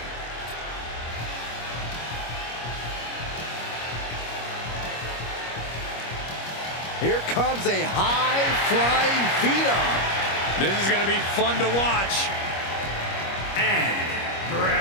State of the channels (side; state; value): right; late; 25 ms